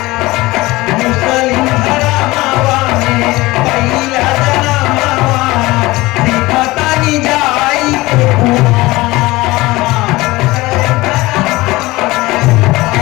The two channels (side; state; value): right; quieter; 20.2 dB